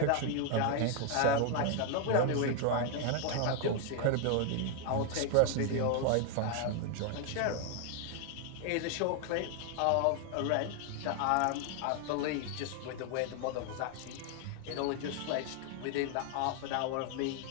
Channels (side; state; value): both; different; correlation 0.01